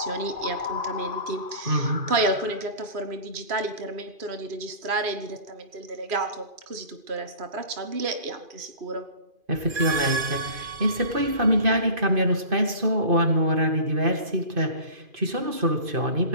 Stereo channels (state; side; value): late; left; 2.5 ms